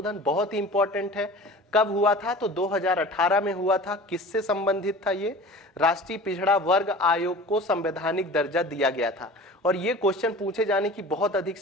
बहुत ही इंपॉर्टेंट है। कब हुआ था? तो 2018 में हुआ था। किससे संबंधित था ये? राष्ट्रीय पिछड़ा वर्ग आयोग को संवैधानिक दर्जा दिया गया था। और ये क्वेश्चन पूछे जाने की बहुत अधिक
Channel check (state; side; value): normal; both; correlation 0.39